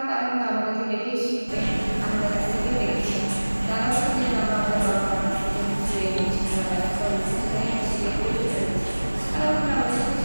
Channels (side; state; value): both; inverted; correlation -1.00